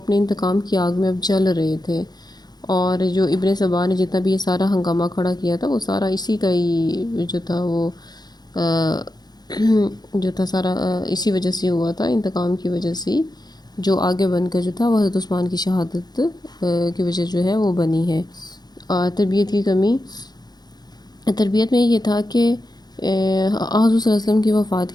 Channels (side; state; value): right; late; 0.20 ms